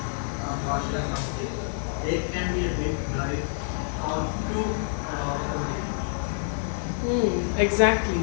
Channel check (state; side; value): silent; right; digital silence